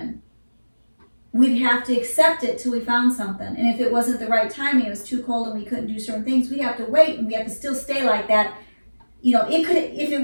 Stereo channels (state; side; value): inverted; both; correlation -1.00